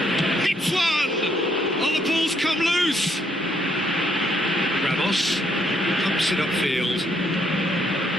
Hits one! Oh, the ball's come loose. Ramos pumps it upfield.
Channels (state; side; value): normal; both; correlation 0.71